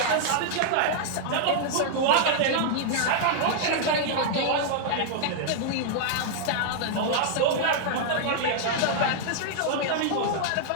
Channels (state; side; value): different; both; correlation -0.01